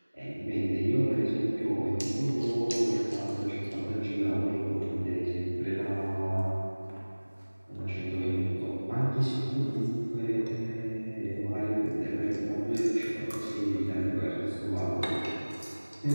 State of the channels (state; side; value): inverted; both; correlation -1.00